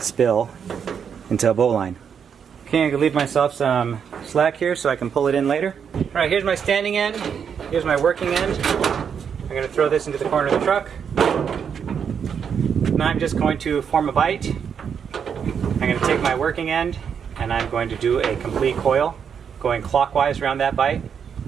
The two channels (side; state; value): left; quieter; 7.3 dB